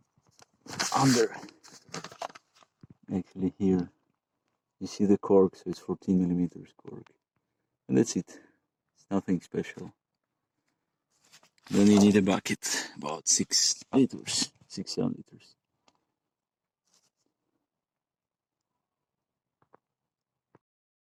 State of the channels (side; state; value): both; identical; correlation 1.00